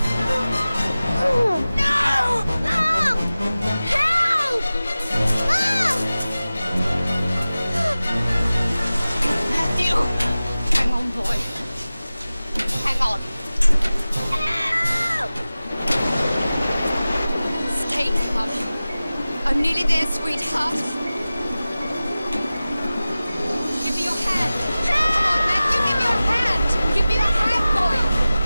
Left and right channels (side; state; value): both; inverted; correlation -0.96